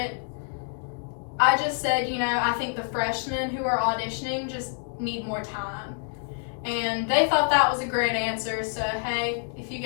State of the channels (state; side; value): silent; right; 56 dB below the other